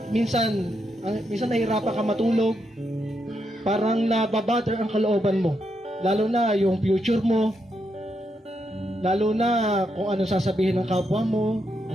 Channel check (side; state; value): both; normal; correlation 0.81